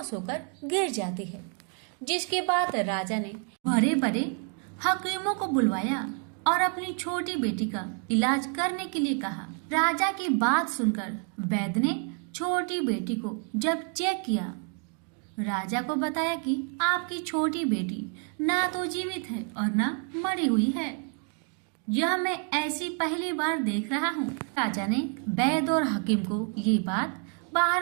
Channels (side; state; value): left; quieter; 39.3 dB